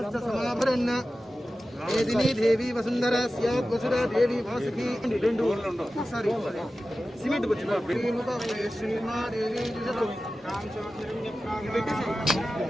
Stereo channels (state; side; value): normal; both; correlation 0.94